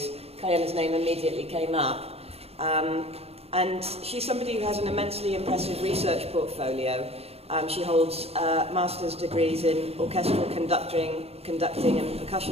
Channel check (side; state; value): left; late; 0.29 ms